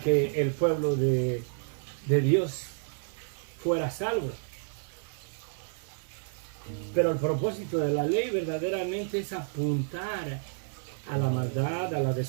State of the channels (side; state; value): left; silent; digital silence